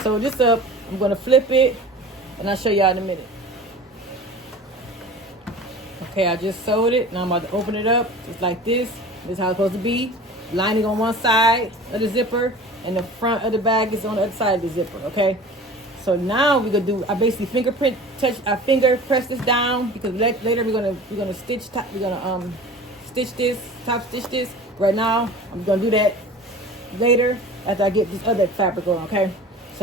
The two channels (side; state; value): both; normal; correlation 0.40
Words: sew this up, I'm gonna flip it, and I'll show y'all in a minute. Okay, I just sewed it. Now I'm about to open it up just like this. This is how it's supposed to be. Lining on one side of the zipper, and the front of the bag is on the other side of the zipper. Okay. So now we're gonna do. I basically finger press this down because later we're gonna stitch stitch this, top stitch this. Right now I'm gonna do that later after I get this other fabric on. Okay.